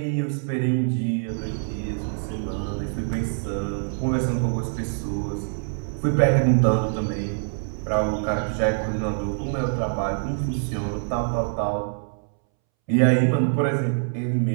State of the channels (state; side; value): silent; left; 62 dB below the other